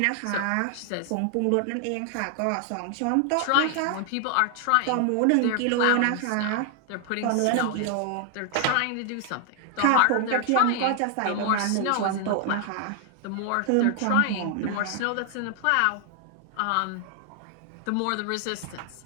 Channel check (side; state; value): both; different; correlation 0.00